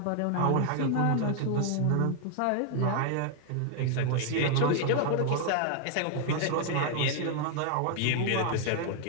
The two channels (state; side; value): different; both; correlation 0.00